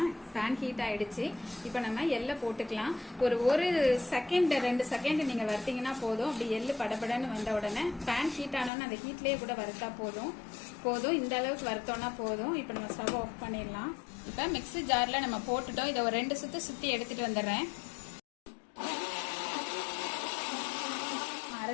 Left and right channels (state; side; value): drops out; right; at 8.7 s